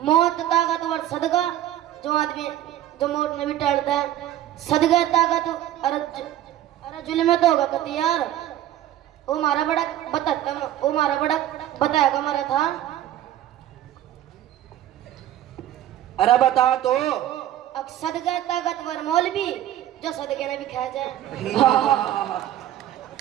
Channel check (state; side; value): quieter; left; 12.6 dB